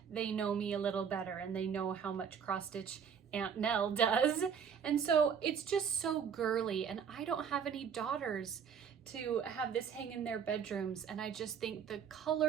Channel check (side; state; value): left; quieter; 7.2 dB